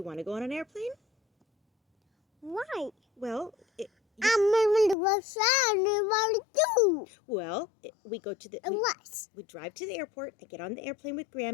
want to go on an airplane? Why? Well, I'm going to go shot and what to do? Well, we go to the... What? We drive to the airport, I get on the airplane with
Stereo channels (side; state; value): right; drops out; at 5.0 s